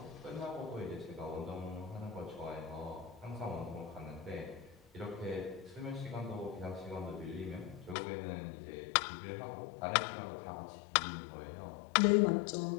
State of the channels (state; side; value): drops out; right; at 8.0 s